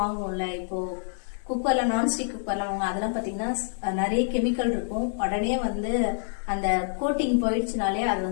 வாங்குவோம்ல, இப்போ குக்கர்ல நான்ஸ்டிக் குக்கர்லாம் வாங்க, அதெல்லாம் பாத்தீங்கன்னா நிறைய கெமிக்கல் இருக்கும். உடனே வந்து அந்த கோட்டிங் போயிடுச்சுனாலே அது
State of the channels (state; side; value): silent; right; digital silence